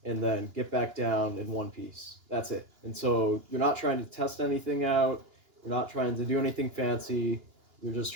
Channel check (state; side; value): late; left; 2.9 ms